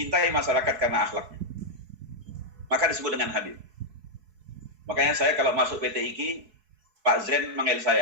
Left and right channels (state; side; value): late; left; 4.7 ms